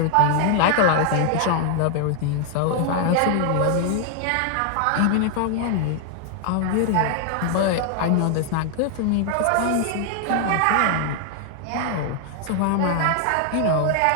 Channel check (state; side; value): different; both; correlation 0.00